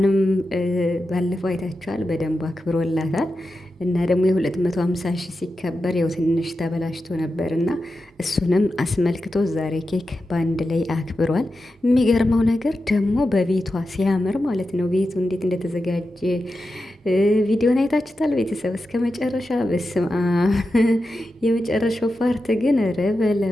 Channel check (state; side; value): normal; both; correlation 0.90